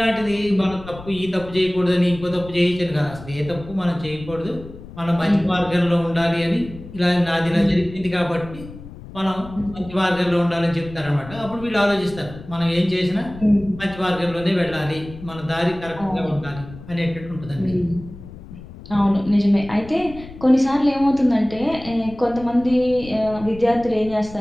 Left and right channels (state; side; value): noise; left; rumble, 16 dB below the sound